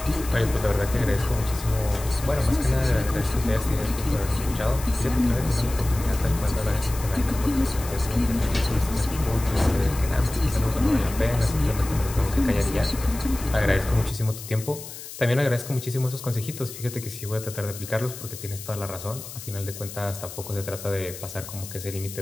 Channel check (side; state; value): left; noise; hiss, 12 dB below the sound